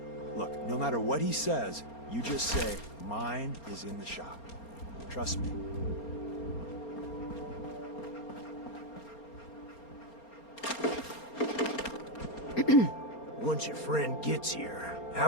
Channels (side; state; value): right; late; 4.3 ms